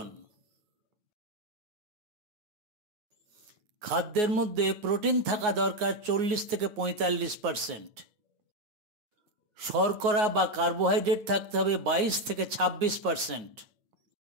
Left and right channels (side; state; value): left; late; 9.5 ms